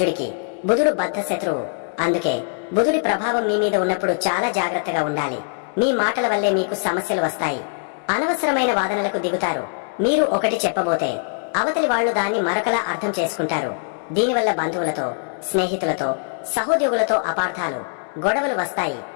బుధుడు బద్ధ శత్రువు. అందుకే బుధుడి ప్రభావం మీ మీద ఉన్నప్పుడు చాలా జాగ్రత్తగా ఉండాలి. మీ మాటల వల్లే మీకు సమస్యలు వస్తాయి. అనవసరమైన వాదనలకు దిగుతారు. మీరు ఒకటి చెప్పబోతే అవతలి వాళ్లు దాన్ని మరొకలా అర్థం చేసుకుంటారు. దీనివల్ల బంధువులతో, స్నేహితులతో, సహోద్యోగులతో అపార్థాలు, గొడవలు వస్తాయి.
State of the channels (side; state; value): right; silent; 64 dB below the other